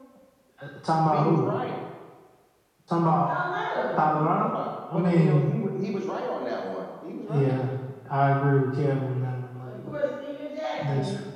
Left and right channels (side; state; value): both; identical; correlation 1.00